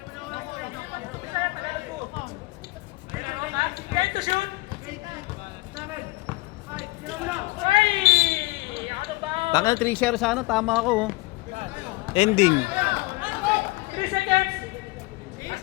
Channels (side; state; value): right; quieter; 22.9 dB